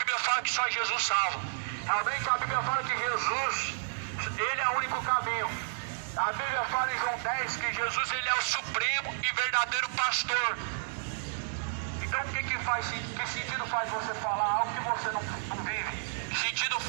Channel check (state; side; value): silent; left; 55 dB below the other